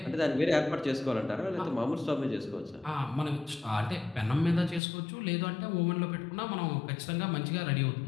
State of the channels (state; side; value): drops out; right; at 4.8 s